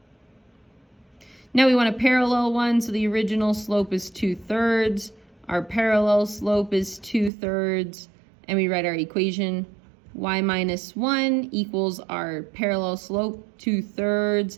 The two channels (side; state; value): left; drops out; at 7.3 s